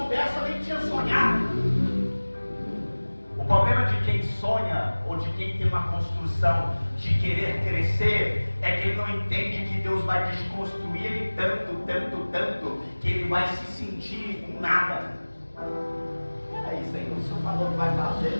eu nem tinha sonhado. O problema de quem sonha, ou de quem tem uma construção de querer crescer, é que ele não entende que Deus vai desconstruir ele tanto, que ele vai se sentir um nada. Peraí, Senhor, o Senhor falou que vai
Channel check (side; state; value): both; inverted; correlation -1.00